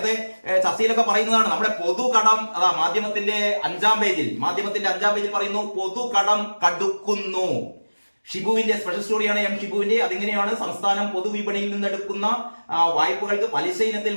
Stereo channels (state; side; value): inverted; both; correlation -1.00